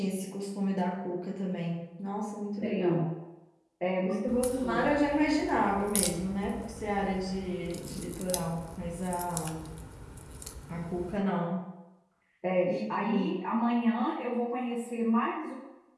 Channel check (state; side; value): identical; both; correlation 1.00